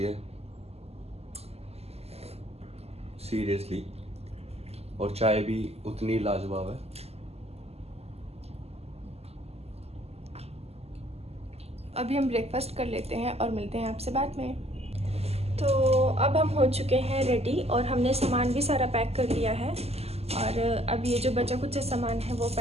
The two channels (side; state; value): left; late; 0.29 ms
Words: है, सीरियसली। और चाय भी उतनी लाजवाब है। अभी हम ब्रेकफास्ट कर लेते हैं और मिलते हैं आपसे बाद में। तो अब हम हो चुके हैं रेडी और हमने सामान भी सारा पैक कर लिया है। और अब ये जो बचा कुछ सामान है वो